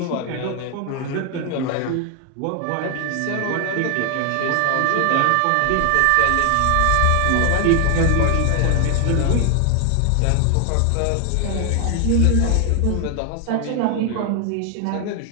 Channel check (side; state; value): both; different; correlation 0.00